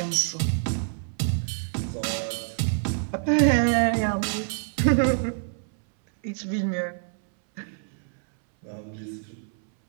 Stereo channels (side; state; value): left; silent; 61 dB below the other